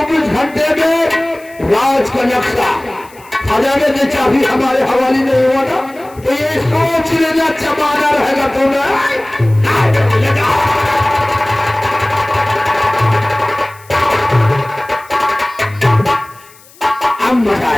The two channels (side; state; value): left; noise; hiss, 25 dB below the sound